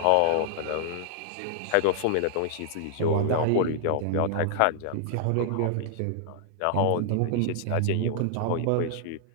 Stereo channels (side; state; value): both; different; correlation -0.01